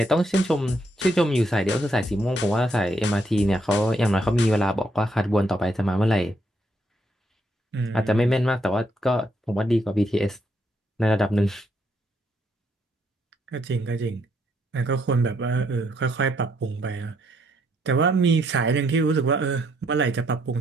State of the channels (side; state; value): both; normal; correlation 0.74